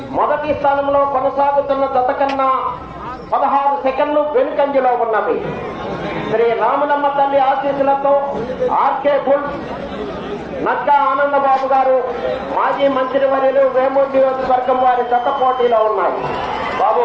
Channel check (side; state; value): both; identical; correlation 1.00